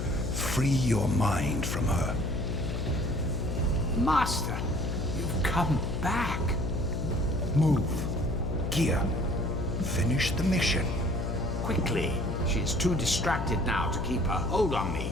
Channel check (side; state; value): left; noise; hum, 1 dB below the sound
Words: Free your mind from her. Master, you've come back. Move. Gear. Finish the mission. Quickly. She is too distracted now to keep her hold on me,